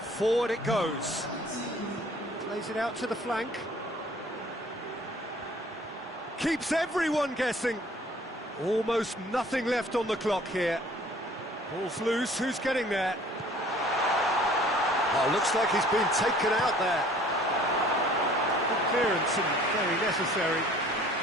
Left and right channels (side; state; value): both; normal; correlation 0.53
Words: Forward it goes. Plays it out to the flank. Keeps everyone guessing. Almost nothing left on the clock here. Ball's loose, who's getting there? Oh, looks like he's been taken out there. Good clearance and very necessary.